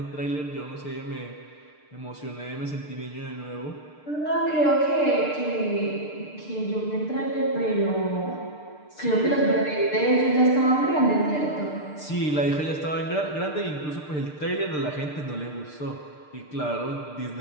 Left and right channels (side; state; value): right; late; 6.7 ms